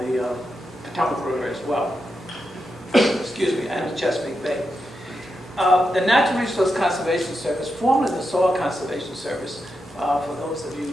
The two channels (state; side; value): normal; both; correlation 0.86